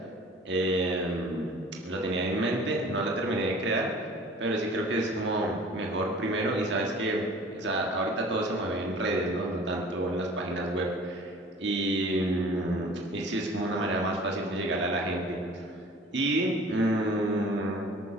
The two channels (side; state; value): both; normal; correlation 0.46